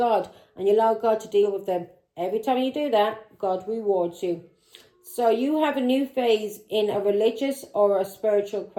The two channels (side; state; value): both; identical; correlation 1.00